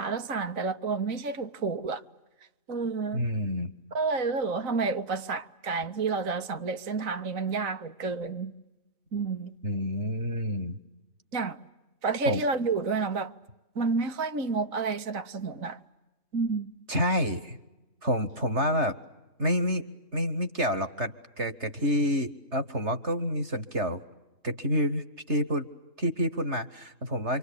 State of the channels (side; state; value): left; late; 3.3 ms